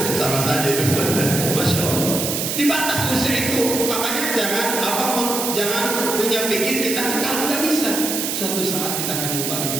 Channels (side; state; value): right; noise; hiss, 2 dB below the sound